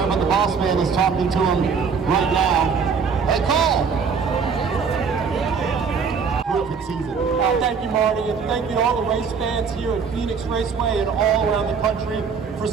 but the boss man is talking to him right now. Hey, Cole! Terrific season. Thank you, Marty, and thank you to all the race fans here at Phoenix Raceway and all around the country for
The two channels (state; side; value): quieter; left; 5.8 dB